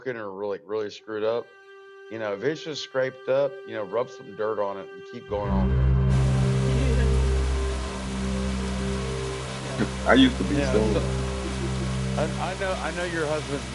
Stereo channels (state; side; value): identical; both; correlation 1.00